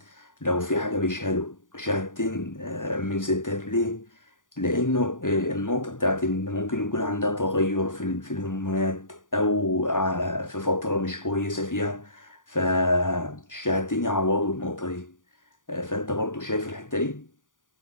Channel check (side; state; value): right; late; 0.88 ms